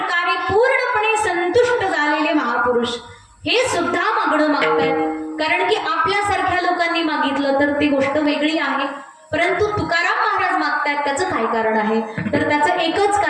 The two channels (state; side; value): identical; both; correlation 1.00